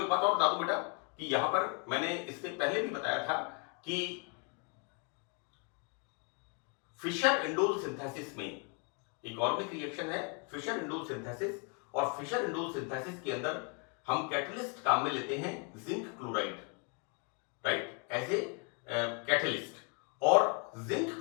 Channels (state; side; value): quieter; right; 35.1 dB